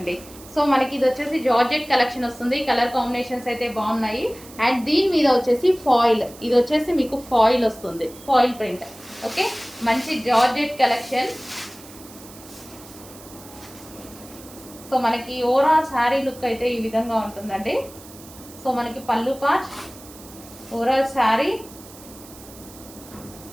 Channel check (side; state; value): right; noise; hiss, 19 dB below the sound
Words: సో మనకి ఇది వచ్చేసి జార్జెట్ కలెక్షన్ వస్తుంది. కలర్ కాంబినేషన్స్ అయితే బాగున్నాయి. అండ్ దీని మీద వచ్చేసి ఫాయిల్, ఇది వచ్చేసి మీకు ఫాయిల్ వస్తుంది, ఫాయిల్ ప్రింట్. ఓకే, మంచి జార్జెట్ కలెక్షన్. సో మనకి ఓవరాల్ శారీ లుక్ అయితే ఈ విధంగా ఉంటుందండి. సో మనకి పళ్ళు పార్ట్, ఓవరాల్ శారీ.